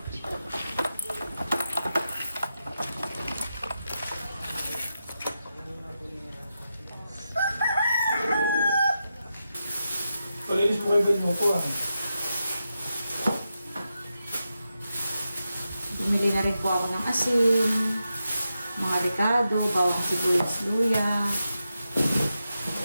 Palinis po kayo ganyan po ah. Bumili na rin po ako ng asin, mga ricado, bawang sibuyas, luya.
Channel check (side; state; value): both; inverted; correlation -0.88